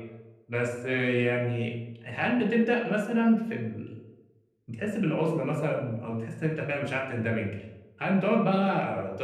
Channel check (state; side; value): identical; both; correlation 1.00